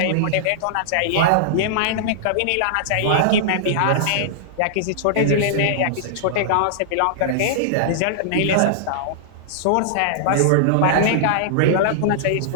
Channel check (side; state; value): both; different; correlation -0.02